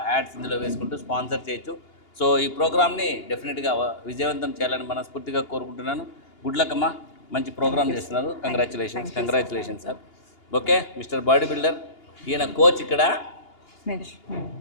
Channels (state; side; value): late; right; 2.8 ms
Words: యాడ్స్ ఇందులో వేసుకుంటూ స్పాన్సర్ చేయొచ్చు. సో ఈ ప్రోగ్రామ్ని డెఫినెట్గా విజయవంతం చేయాలని మనస్ఫూర్తిగా కోరుకుంటున్నాను. గుడ్ లక్ అమ్మా, మంచి ప్రోగ్రామ్ చేస్తున్నారు. Congratulations sir. Okay, mister body builder. ఈయన కోచ్ ఇక్కడ.